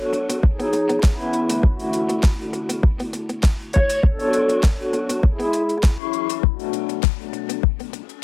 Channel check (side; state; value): right; drops out; at 6.0 s